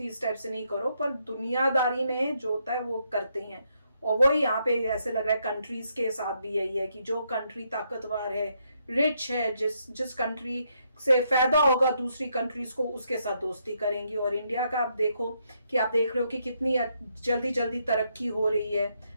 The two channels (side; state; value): both; inverted; correlation -0.76